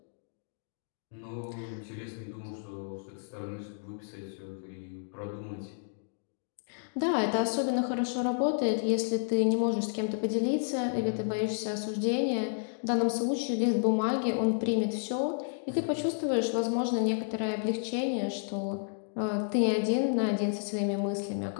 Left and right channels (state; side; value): silent; right; digital silence